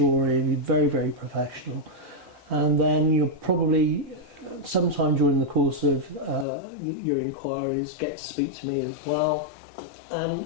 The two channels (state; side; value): drops out; right; at 6.5 s